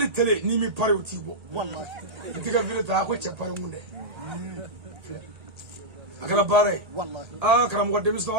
télé n'i mi pari o t'i bɔ wallahi i t'i ka vidéo ta a ko cɛ pari kun dɛ a kɛra baara ye wallahi karamɔgɔ denmisɛnw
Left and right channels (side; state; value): left; late; 1.8 ms